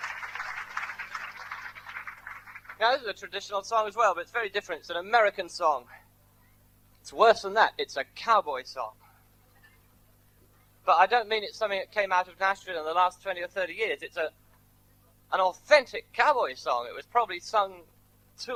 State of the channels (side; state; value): both; identical; correlation 1.00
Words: Now, this is a traditional song as well, but it's very different. It's an American song. It's worse than that. It's a cowboy song. But I don't mean it's something that came out of Nashville in the last 20 or 30 years. It's an authentic cowboy song. It was probably sung to